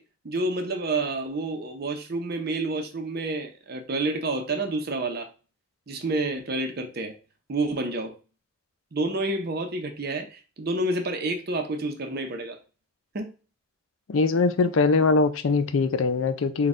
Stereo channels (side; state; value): both; normal; correlation 0.14